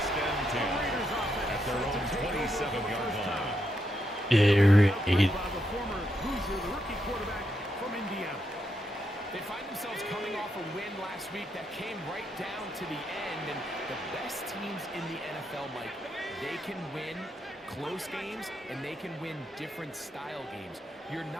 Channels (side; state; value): both; normal; correlation 0.81